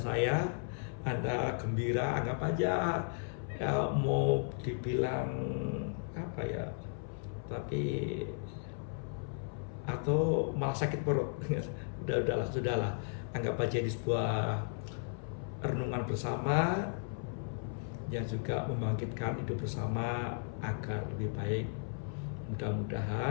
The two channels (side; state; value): right; silent; 54 dB below the other